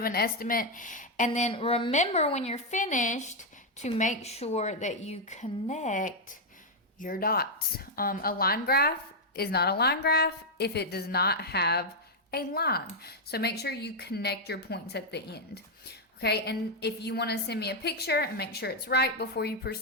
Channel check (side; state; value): both; normal; correlation 0.00